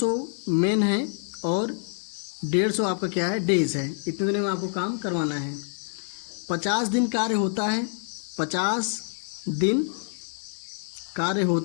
मेन है और 150 आपका क्या है, डेज है। इतने दिनों में आपको काम करवाना है। 50 दिन कार्य होता है, 50 दिन कार्य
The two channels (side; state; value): right; silent; 60 dB below the other